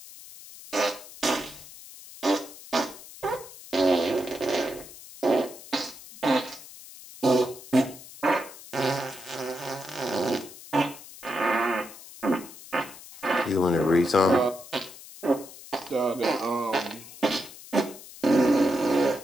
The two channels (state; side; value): noise; left; hiss, 17 dB below the sound